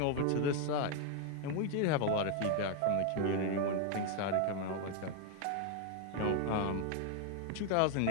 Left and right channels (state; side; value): different; both; correlation 0.00